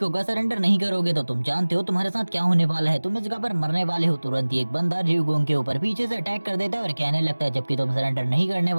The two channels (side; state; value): both; inverted; correlation -1.00